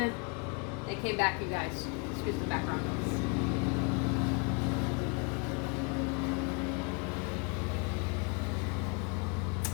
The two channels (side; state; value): right; quieter; 33.0 dB